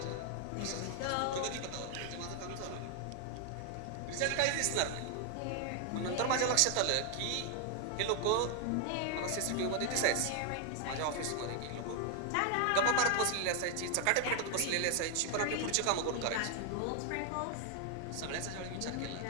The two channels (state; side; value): different; both; correlation 0.00